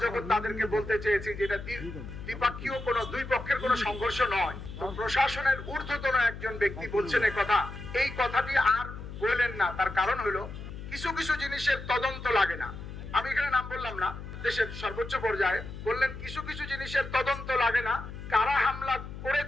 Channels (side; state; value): left; noise; hum, 10 dB below the sound